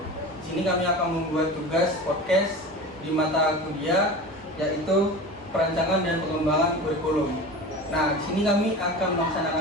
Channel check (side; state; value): both; normal; correlation 0.32